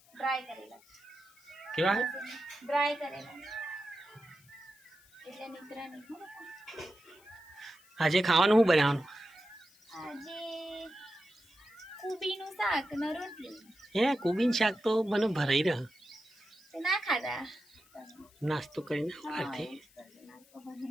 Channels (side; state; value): left; noise; hiss, 28 dB below the sound